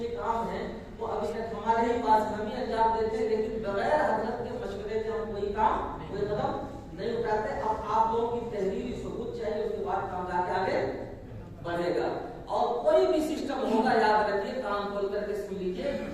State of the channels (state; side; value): identical; both; correlation 1.00